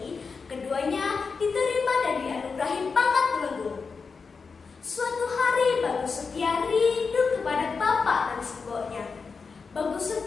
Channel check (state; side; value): quieter; right; 5.0 dB